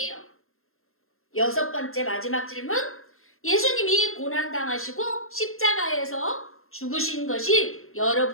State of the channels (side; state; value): right; late; 0.61 ms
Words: 여섯 번째 마지막 질문. 예수님이 고난당하시고 십자가에서 죽으신 것이